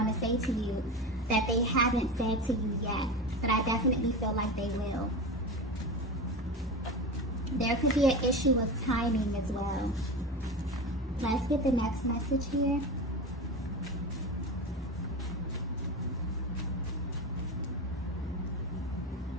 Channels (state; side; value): normal; both; correlation 0.25